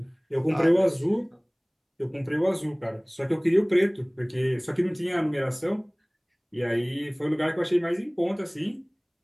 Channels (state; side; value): identical; both; correlation 1.00